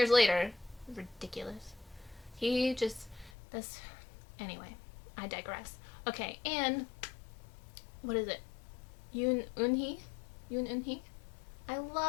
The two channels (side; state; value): right; drops out; at 3.3 s